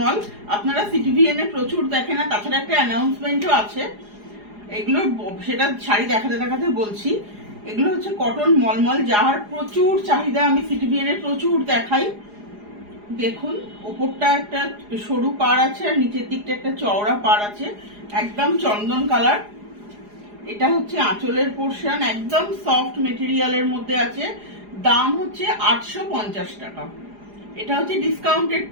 আপনারা সিটিভিএন এ প্রচুর দেখেন, না তাছাড়া একটা অ্যানাউন্সমেন্টও আছে। এগুলো সেটা শাড়ি দেখাতে দেখাতে বলছি। এগুলো হচ্ছে কটন মলমল, যার প্রচুর চাহিদা, আমি সিটিভিএন এ প্রচুর দেখাই। দেখুন, ওপরটা একটা সরু পাড় আছে আর নিচের দিকটা একটা চওড়া পাড় আছে, একদম চন্দন কালার। এটা হচ্ছে আঁচলের পোর্শন, একদম সফট মেটেরিয়ালের মধ্যে আছে। দাম হচ্ছে 850 টাকা। এটা হচ্ছে ডিসকাউন্টেড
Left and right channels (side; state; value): left; late; 4.9 ms